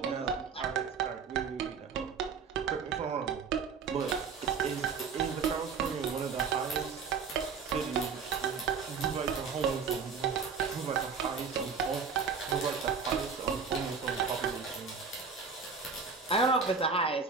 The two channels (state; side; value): quieter; left; 5.6 dB